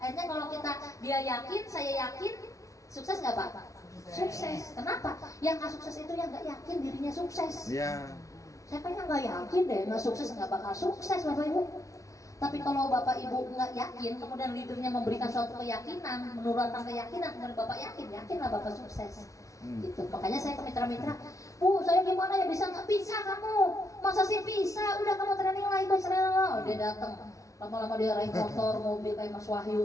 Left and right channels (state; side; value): late; right; 0.16 ms